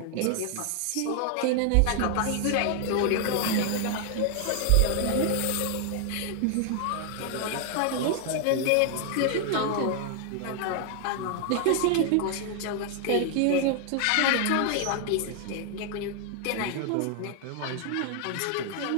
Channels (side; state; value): both; different; correlation 0.00